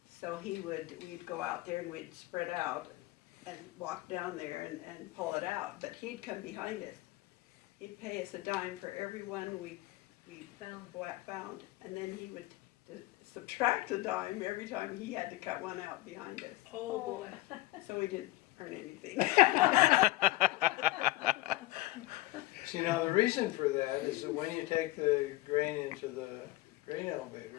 So we'd go out there and we'd spread out and walk down there and pull it out, but he'd come behind us. He'd pay us a dime for every one we found, and then he would subtract a dime every time he had to cut one out behind us. Oh, boy. So we didn't earn anything. See, now the reason for that is that when you take the grain into the grain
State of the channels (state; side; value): quieter; right; 18.8 dB